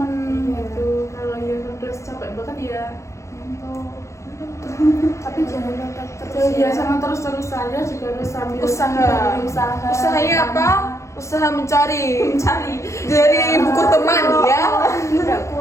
gitu. Kalau ya terus capek banget ya. Ngantuk. Tapi jangan nonton terus Jadi ya sama terus-terusan ya juga harus sambil Usaha. usaha. Usahanya apa? Usaha mencari dari Iya. buku teman ya. Tidak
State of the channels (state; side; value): late; right; 0.14 ms